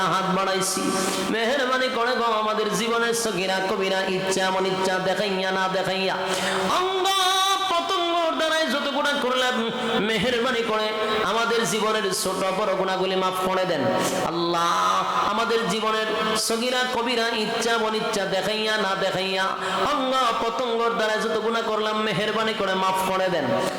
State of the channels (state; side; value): identical; both; correlation 1.00